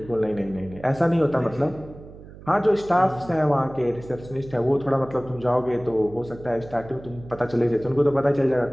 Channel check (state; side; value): noise; right; hum, 17 dB below the sound